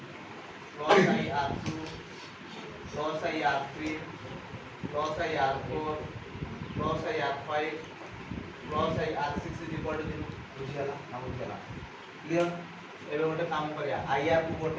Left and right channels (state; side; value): identical; both; correlation 1.00